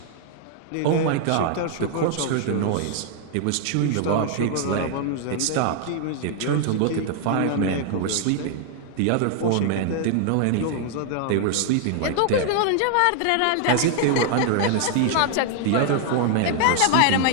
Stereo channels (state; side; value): different; both; correlation 0.00